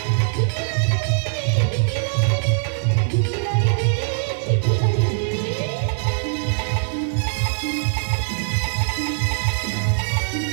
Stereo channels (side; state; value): left; silent; digital silence